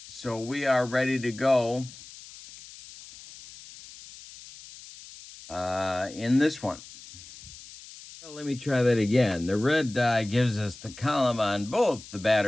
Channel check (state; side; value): noise; left; hiss, 17 dB below the sound